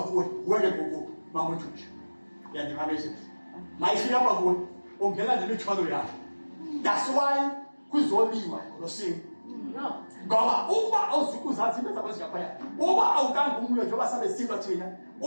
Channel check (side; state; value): both; inverted; correlation -1.00